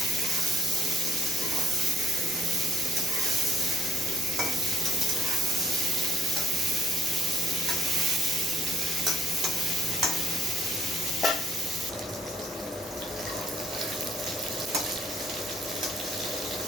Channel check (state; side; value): normal; both; correlation 0.68